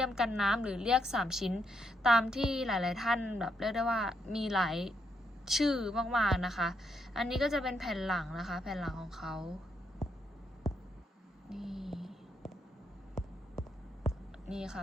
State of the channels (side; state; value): both; normal; correlation 0.77